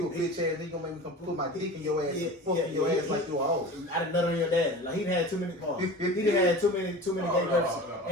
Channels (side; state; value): both; normal; correlation 0.35